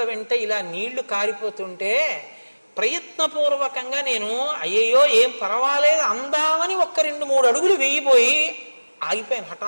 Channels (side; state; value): both; inverted; correlation -1.00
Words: వెంట ఇలా నీళ్లు కారిపోతుంటే ప్రయత్నపూర్వకంగా నేను అయ్యయ్యో ఏం పర్వాలేదు అందామని 1-2-3 అడుగులు వేయిపోయి ఆగిపోయాను